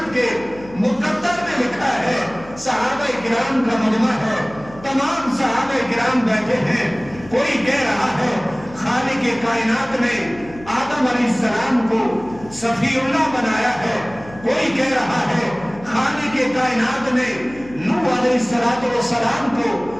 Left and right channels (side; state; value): left; noise; hum, 19 dB below the sound